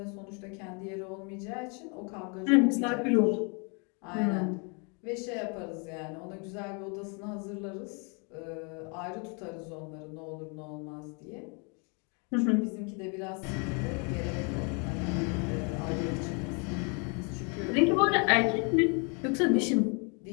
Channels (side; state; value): right; quieter; 35.0 dB